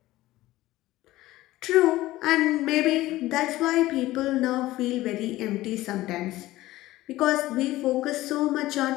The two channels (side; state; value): right; quieter; 16.8 dB